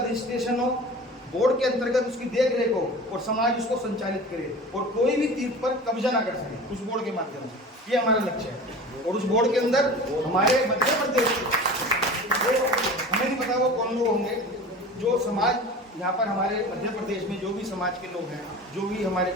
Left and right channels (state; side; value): normal; both; correlation 0.36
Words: हो, बोर्ड के अंतर्गत उसकी देख रेख हो और समाज उसको संचालित करे और कोई भी तीर्थ पर कब्जा ना कर सके उस बोर्ड के माध्यम से। ये हमारा लक्ष्य है। और उस बोर्ड के अंदर हमारे मध्य प्रदेश के हमें नहीं पता वो कौन लोग होंगे जो समाज यहाँ पर हमारे मध्य प्रदेश में जो भी समाज के लोग हैं, जो भी हमारे